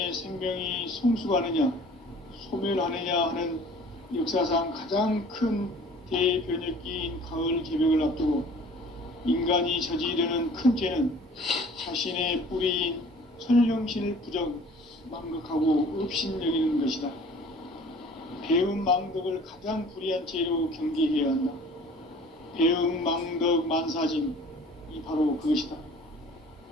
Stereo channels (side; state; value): both; normal; correlation 0.49